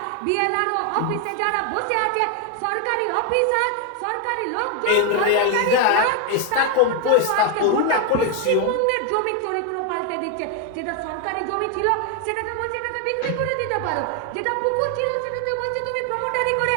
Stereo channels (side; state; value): both; different; correlation 0.01